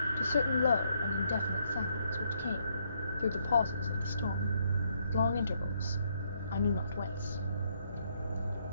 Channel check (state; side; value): inverted; both; correlation -0.72